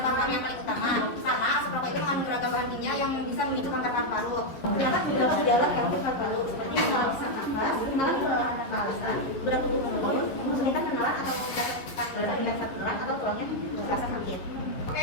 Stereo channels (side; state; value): right; late; 11 ms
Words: paru yang paling utama karena asap rokok itu mengandung beragam bahan kimia yang bisa memicu kanker paru-paru. Terdapat beberapa gejala kanker paru-paru seperti mengalami sesak nafas, mengalami kelelahan nafas, berat tubuh menurun, kesulitan menelan atau tulangnya terasa sakit.